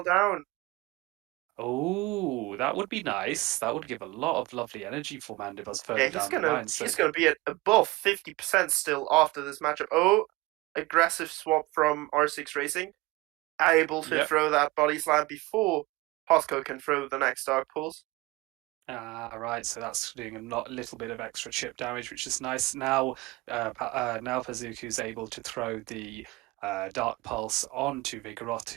down. Oh, that would be nice. That would give a lot of lovely energy for Mandibuzz Yeah, further he's down the gonna line. So he's gonna be at above 50% still after this matchup. Oh, aggressive swap from R6 Racing, able to yep. throw that body slam before Posco can throw the next Dark Pulse. Right, so that's doing little bit of extra chip damage, which is nice. Now, now Pazuku's able to throw the Dark Pulse onto Vigoroth,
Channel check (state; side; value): quieter; left; 21.2 dB